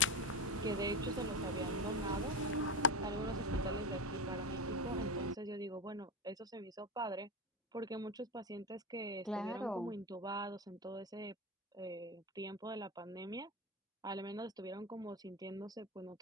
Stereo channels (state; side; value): normal; both; correlation 0.19